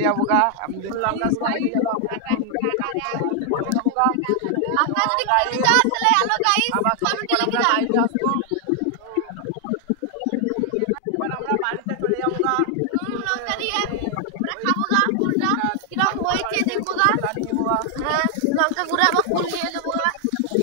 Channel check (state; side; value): different; both; correlation 0.00